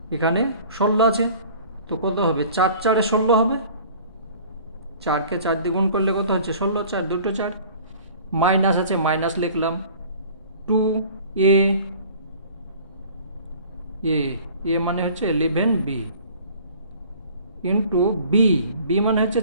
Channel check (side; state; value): both; inverted; correlation -0.48